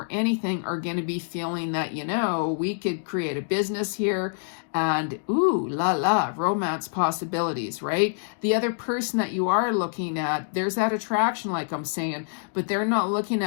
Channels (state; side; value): silent; right; digital silence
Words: anything, are going to be feeling that, we could create a business here, and ooh, la la, romance possibilities, right? The other person that you are looking at, there's that attraction, like I'm saying, but they're not looking